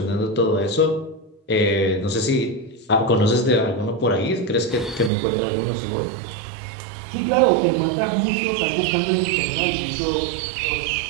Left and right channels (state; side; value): drops out; left; at 5.1 s